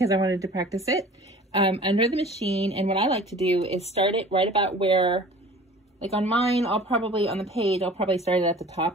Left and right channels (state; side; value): normal; both; correlation 0.44